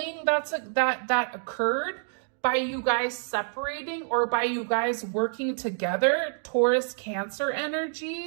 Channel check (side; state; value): left; silent; digital silence